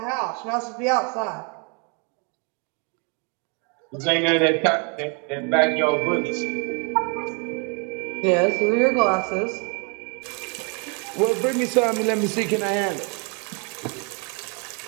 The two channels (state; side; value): quieter; left; 35.0 dB